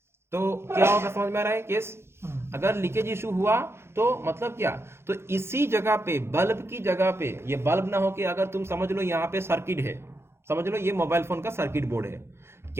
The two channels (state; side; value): late; left; 0.12 ms